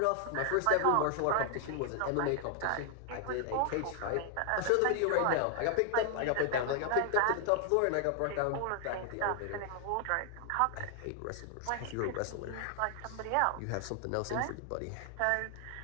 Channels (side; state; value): both; different; correlation 0.00